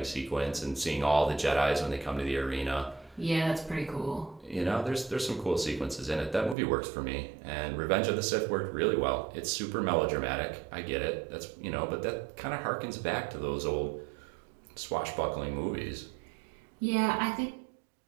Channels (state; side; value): drops out; left; at 6.6 s